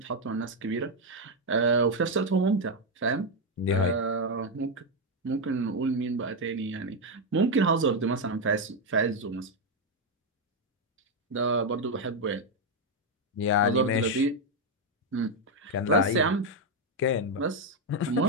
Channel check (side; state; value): both; normal; correlation 0.04